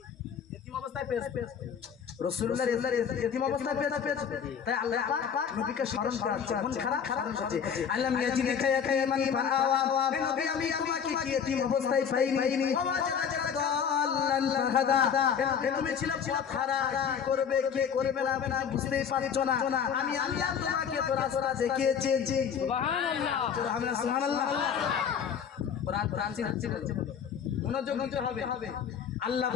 এতিম অবস্থায় পেয়েছি। রাসূলুল্লাহ এতিম অবস্থায় পেয়েছে। তাই আল্লাহ পাক নবীকে স্মরণ করাচ্ছে, মন খারাপ হচ্ছে। আলাম ইয়াজিদিকা ইয়াতীমান ফাআওয়া। হে নবী আমি তোমাকে কি এতিম অবস্থায় পাইনি? তুমি ছিলে পথহারা, কি করবে কে করবে না বুঝতেই পারছো না। আমি আল্লাহ তোমাকে তো রাস্তা দেখিয়েছি। সুবহানাল্লাহ, সুবহানাল্লাহ। কোরআন শিখছে, মনোযোগ দিতে হবে। আল্লাহ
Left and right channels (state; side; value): quieter; right; 7.5 dB